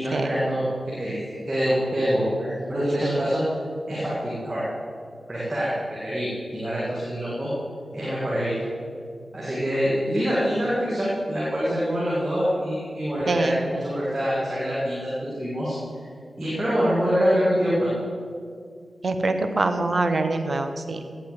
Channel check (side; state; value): both; normal; correlation 0.93